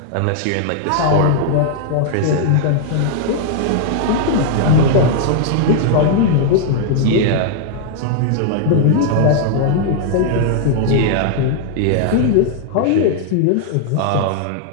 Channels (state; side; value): different; both; correlation 0.00